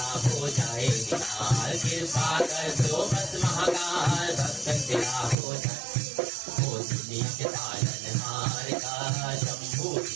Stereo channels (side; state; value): left; drops out; at 5.4 s